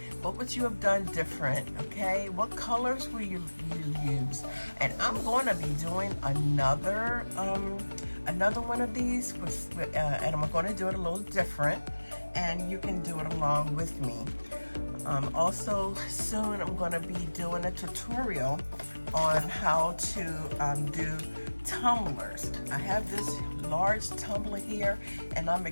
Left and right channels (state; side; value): inverted; both; correlation -1.00